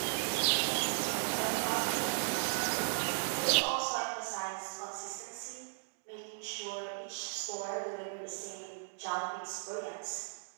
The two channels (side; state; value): left; silent; digital silence